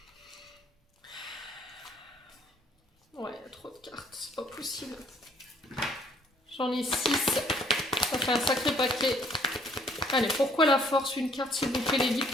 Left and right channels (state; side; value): normal; both; correlation 0.62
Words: Ouais, il y a trop de cartes, c'est pas possible. J'en ai 6. Ça fait un sacré paquet. Allez, pourquoi la force? Une carte, s'il vous plaît, les guides.